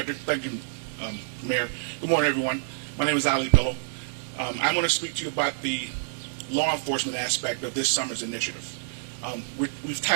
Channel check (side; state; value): left; silent; 60 dB below the other